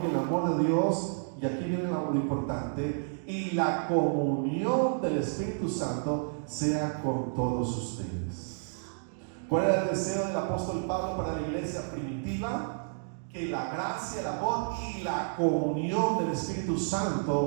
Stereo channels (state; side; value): silent; left; digital silence